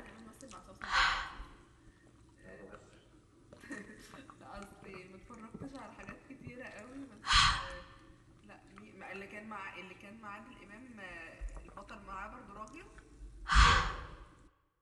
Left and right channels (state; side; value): identical; both; correlation 1.00